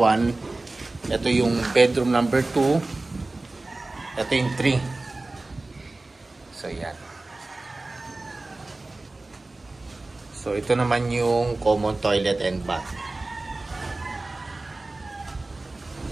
Ito yung bedroom number 2. Ito yung 3. So, yan. So, ito naman yung common toilet and bath.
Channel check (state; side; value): quieter; left; 3.1 dB